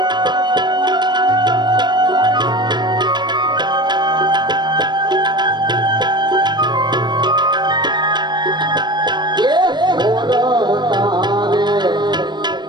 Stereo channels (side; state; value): left; late; 0.21 ms